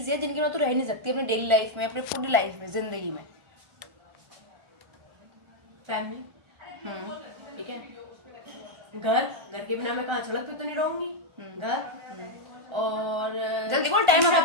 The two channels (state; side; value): late; left; 1.4 ms